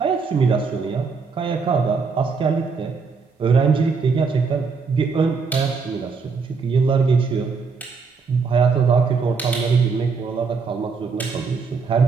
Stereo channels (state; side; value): quieter; left; 5.0 dB